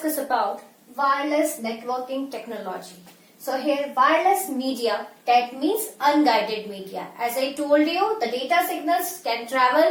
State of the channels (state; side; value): identical; both; correlation 1.00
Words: about wireless networking technology. So here wireless media, that means unguided media. As I told you, the data signals can